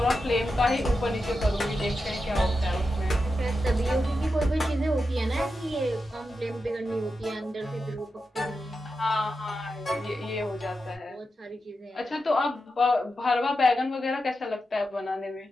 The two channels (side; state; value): both; normal; correlation 0.89